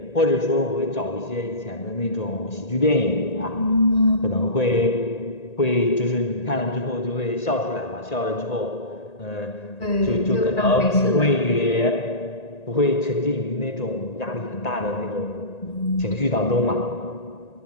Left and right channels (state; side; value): late; right; 1.9 ms